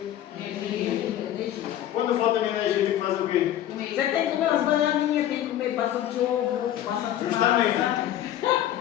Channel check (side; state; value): right; quieter; 12.1 dB